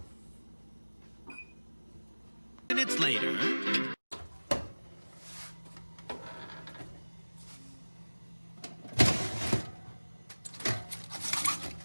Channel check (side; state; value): both; inverted; correlation -1.00